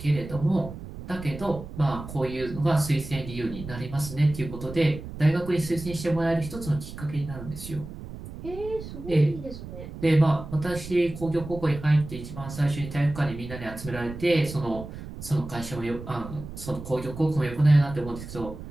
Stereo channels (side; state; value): right; noise; rumble, 11 dB below the sound